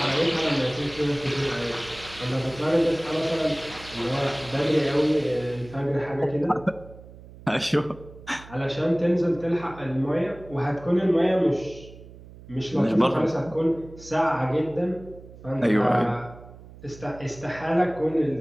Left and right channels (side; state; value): right; noise; hum, 19 dB below the sound